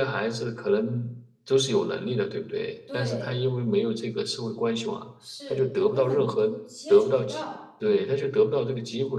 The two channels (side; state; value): both; identical; correlation 1.00